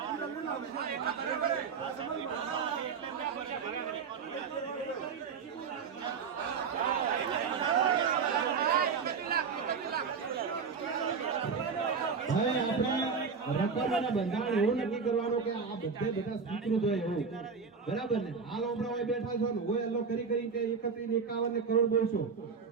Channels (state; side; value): quieter; left; 5.6 dB